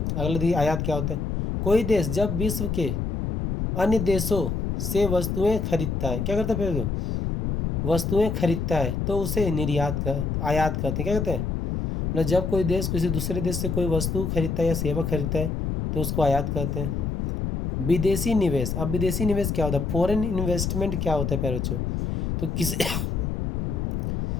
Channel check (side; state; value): left; noise; rumble, 2 dB below the sound